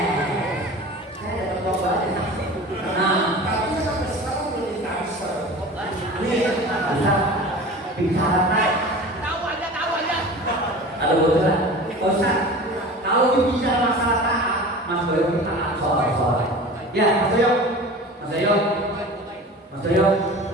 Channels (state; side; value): normal; both; correlation 0.37